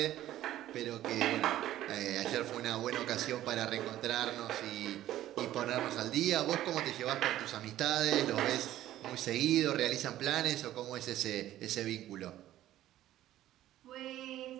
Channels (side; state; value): left; quieter; 13.5 dB